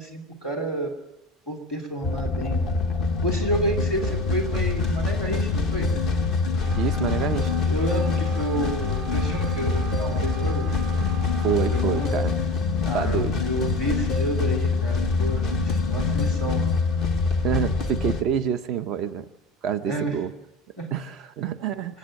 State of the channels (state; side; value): normal; both; correlation 0.32